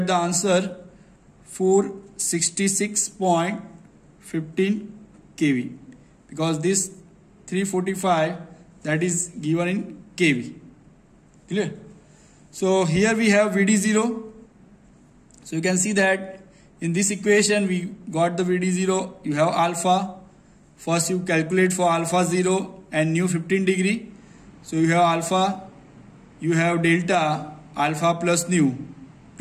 the answer 466.15 kV, because this 345 that is given in kV. Clear? So here we have VD0. So you can see that in this equation we got the VD0. You have alpha. First you calculate for alpha 0 and nu 15 degree. So you have alpha, you have delta, alpha plus nu.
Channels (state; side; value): identical; both; correlation 1.00